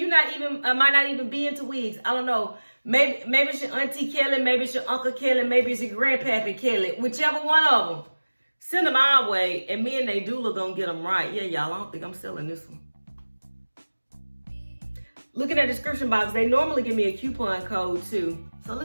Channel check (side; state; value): both; inverted; correlation -1.00